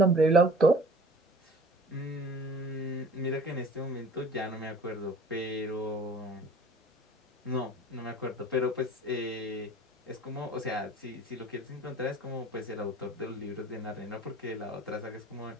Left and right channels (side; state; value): both; normal; correlation 0.46